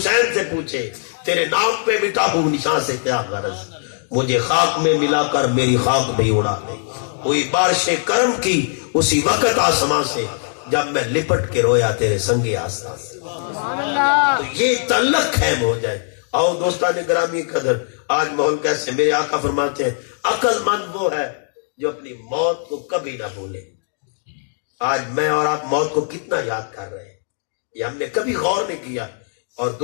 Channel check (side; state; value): right; silent; digital silence